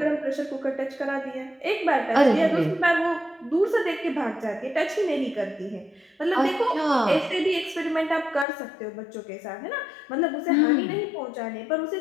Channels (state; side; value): drops out; right; at 8.5 s